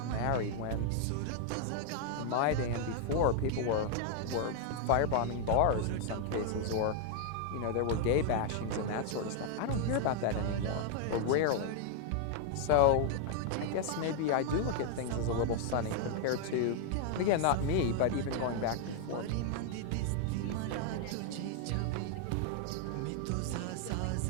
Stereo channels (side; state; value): both; different; correlation 0.00